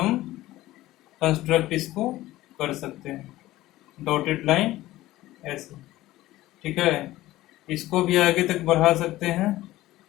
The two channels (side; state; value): right; quieter; 16.5 dB